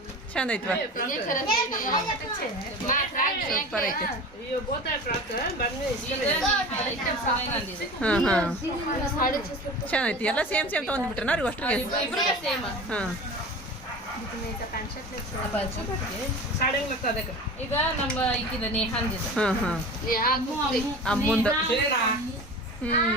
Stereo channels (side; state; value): both; normal; correlation 0.35